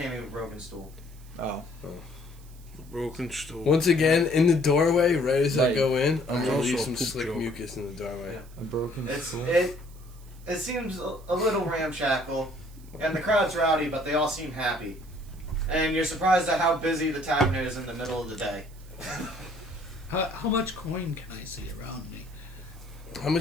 of a broken stool. Oh. Broken stool. Once again, in the doorway, right as I Right. go in, I'm gonna Also leave a some poop slick joke. mucus in the doorway. Yeah. A broken stool. It seems a little ramshackle, and the crowd's rowdy, but they all seem happy. And you're surprised at how busy the tavern is in the middle of the day. How much coin can I see around me? How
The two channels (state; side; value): noise; right; hiss, 25 dB below the sound